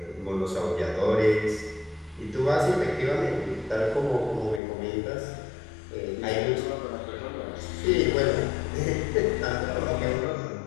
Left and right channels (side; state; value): right; drops out; at 4.6 s